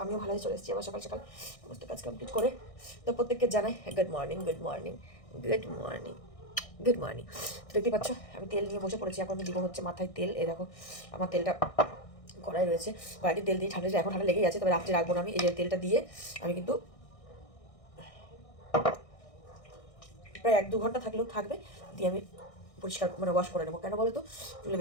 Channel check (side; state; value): right; late; 1.6 ms